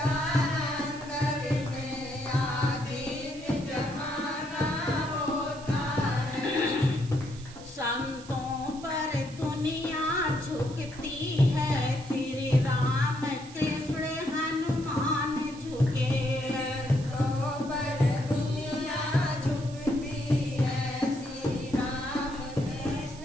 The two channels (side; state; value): right; noise; hiss, 19 dB below the sound